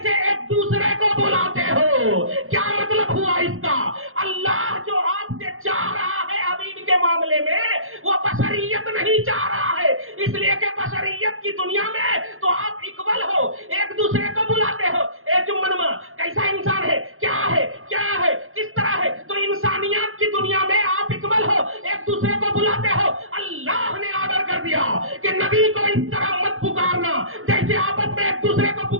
ایک دوسرے کو بلاتے ہو۔ کیا مطلب ہوا اس کا؟ اللہ جو آپ سے چاہ رہا ہے حبیب کے معاملے میں، وہ بشریت نہیں چاہ رہا ہے، اس لیے کہ بشریت کی دنیا میں تو آپ اکول ہو، ایک دوسرے کو بلاتے ہو۔ اے جمنما کیسا انسان ہے، کیا ہے، کیا ہے، کس طرح ہے؟ تو انسانیت کی دنیا میں آپ اکول ہو، ایک دوسرے کو بلاتے ہو۔ اللہ نے آرڈر کر دیا کہ نبی کو اس طرح مت پکارنا جیسے آپس میں ایک دوسرے کو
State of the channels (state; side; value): late; left; 0.61 ms